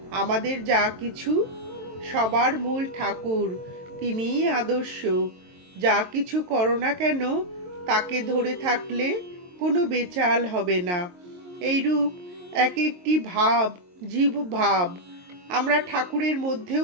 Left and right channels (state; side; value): late; left; 22 ms